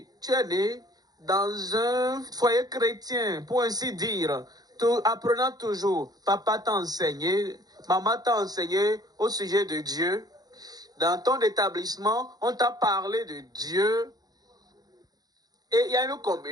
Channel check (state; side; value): late; left; 0.19 ms